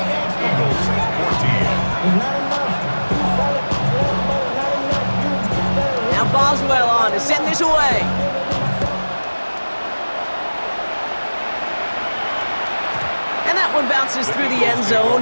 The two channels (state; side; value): inverted; both; correlation -1.00